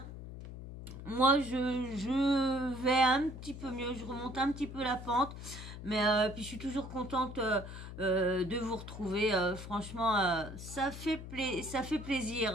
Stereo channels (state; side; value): noise; left; hum, 11 dB below the sound